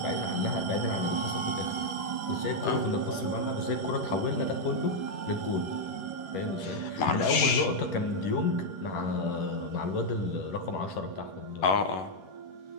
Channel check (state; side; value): late; right; 11 ms